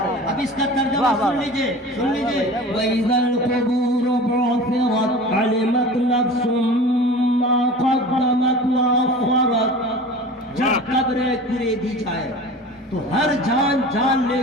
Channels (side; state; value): both; normal; correlation 0.38